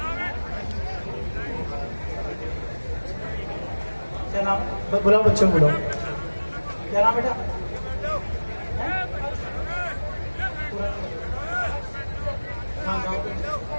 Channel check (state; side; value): inverted; both; correlation -1.00